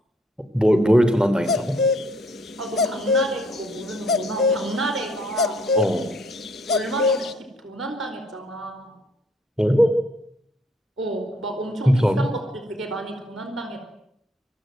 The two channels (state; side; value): normal; both; correlation 0.64